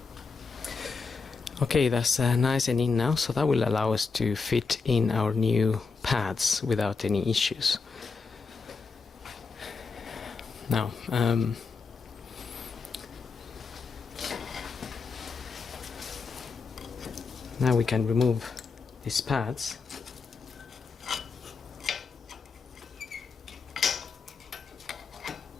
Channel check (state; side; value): quieter; right; 4.7 dB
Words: Okay, that's nice and in now, so that will allow us to fit in our new pads without any issues. Now, now we can remove these pads.